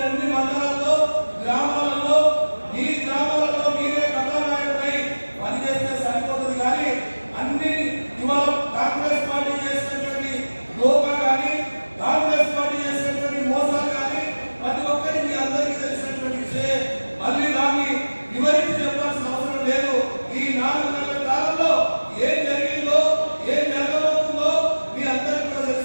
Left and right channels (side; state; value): both; inverted; correlation -1.00